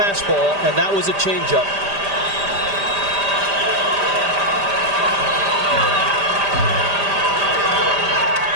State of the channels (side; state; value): left; late; 5.0 ms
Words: and that was a changeup.